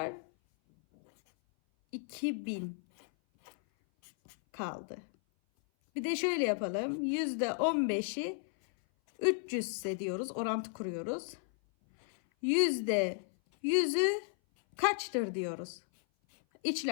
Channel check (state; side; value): silent; right; 55 dB below the other